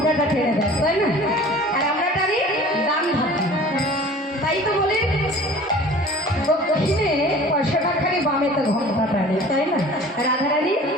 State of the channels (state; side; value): normal; both; correlation 0.45